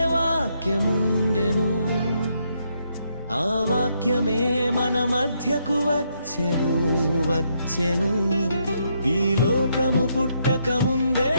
వాక్యముండెను, ఆ వాక్యమే మన మధ్యకు వచ్చెను. ఈ లోకము పుట్టక ముందే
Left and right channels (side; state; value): both; inverted; correlation -0.76